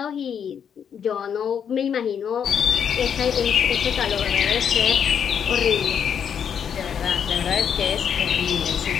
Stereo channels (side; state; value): right; quieter; 7.9 dB